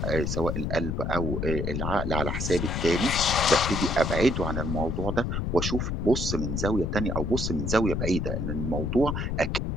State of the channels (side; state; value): left; noise; rumble, 1 dB below the sound